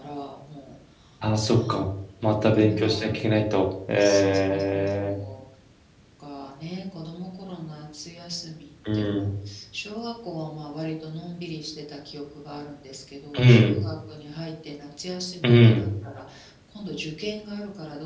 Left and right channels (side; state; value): both; identical; correlation 1.00